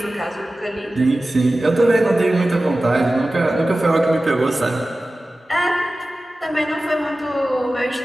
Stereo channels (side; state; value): both; normal; correlation 0.96